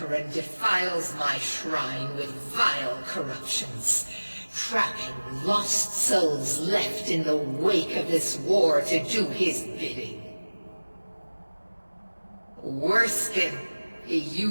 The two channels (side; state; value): both; inverted; correlation -1.00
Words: defiles my shrine with vile corruptions, trapping lost souls left in the wake of this war to do his bidding. Worse still, he